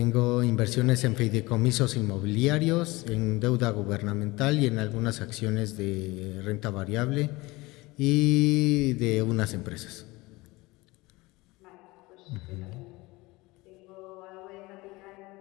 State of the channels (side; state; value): right; quieter; 21.8 dB